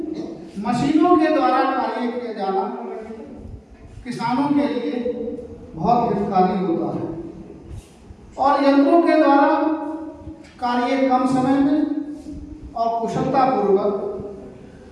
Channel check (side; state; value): both; identical; correlation 1.00